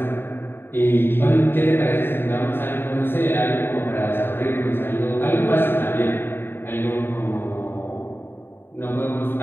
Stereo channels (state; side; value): late; right; 0.10 ms